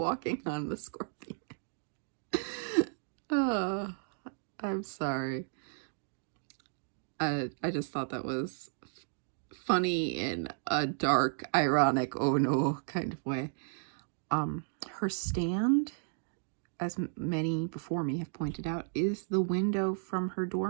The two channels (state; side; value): silent; left; digital silence